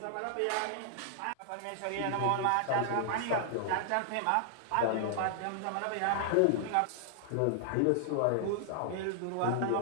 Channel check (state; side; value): different; both; correlation -0.01